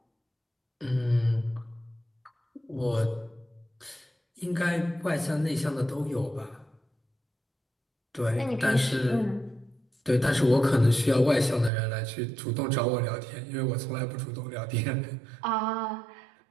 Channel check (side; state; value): left; drops out; at 11.7 s